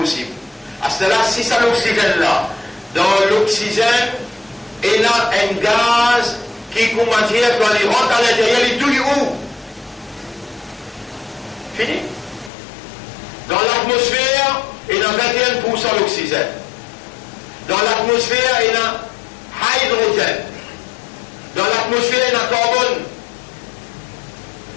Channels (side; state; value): right; drops out; at 12.5 s